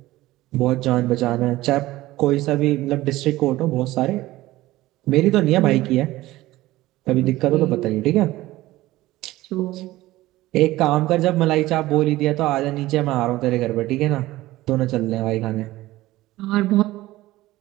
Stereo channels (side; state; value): left; quieter; 17.2 dB